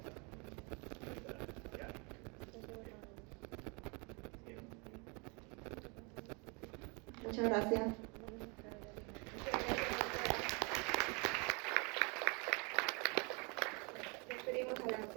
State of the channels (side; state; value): left; quieter; 31.6 dB